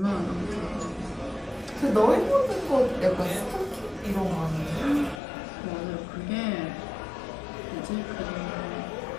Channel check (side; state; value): right; drops out; at 5.2 s